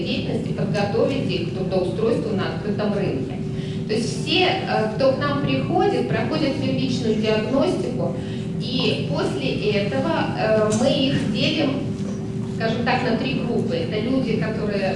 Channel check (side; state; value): both; identical; correlation 1.00